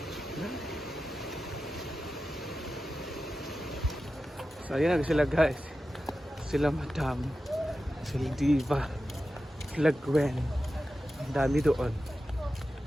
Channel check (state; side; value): normal; both; correlation 0.93